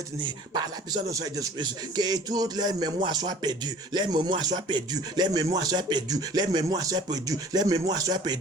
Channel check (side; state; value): both; normal; correlation 0.49